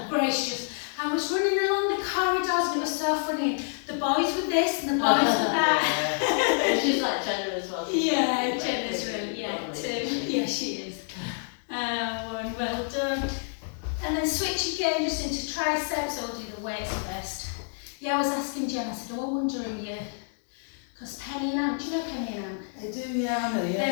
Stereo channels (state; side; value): silent; right; 59 dB below the other